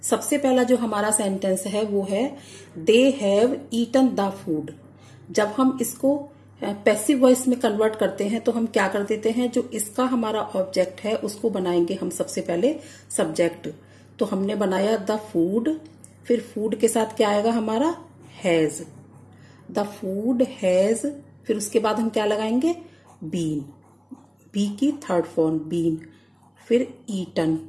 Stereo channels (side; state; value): both; identical; correlation 1.00